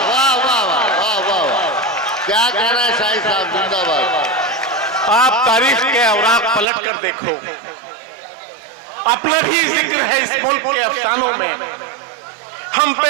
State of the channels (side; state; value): left; drops out; at 6.7 s